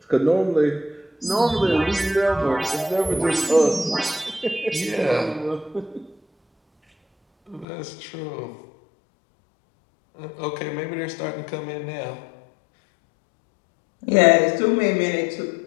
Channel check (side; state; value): right; drops out; at 7.7 s